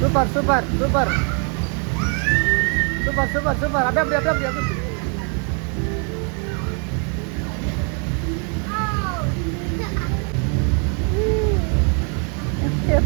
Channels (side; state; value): left; quieter; 38.8 dB